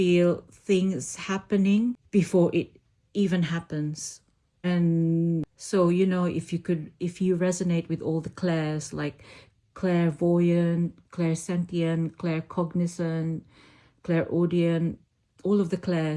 things happening before it even happens. And so, if you resonate with all the clairs, like clairvoyant, clairsentient, claircognizant, clairaudient, all of the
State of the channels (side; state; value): both; identical; correlation 1.00